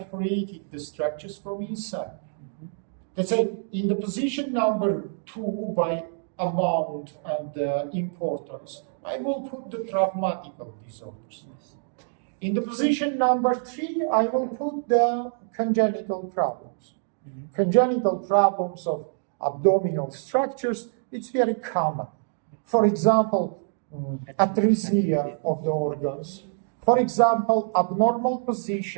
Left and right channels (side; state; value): left; silent; digital silence